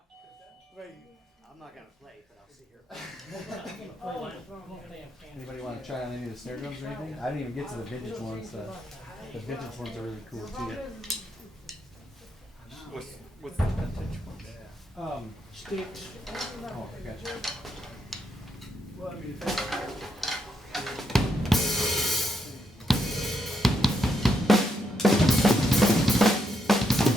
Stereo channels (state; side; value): normal; both; correlation 0.79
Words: I'm not gonna play, but I'll sit here. Anybody want to try on any of the snare drums or anything? I didn't even get to the vintage ones. The vintage ones are really cool too. What's the vintage one? Sticks. Oh, I gotcha. Well, I mean,